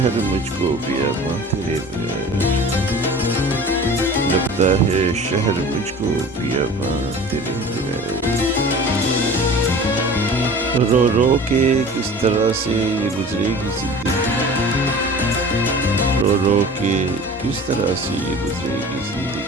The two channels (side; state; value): both; normal; correlation 0.41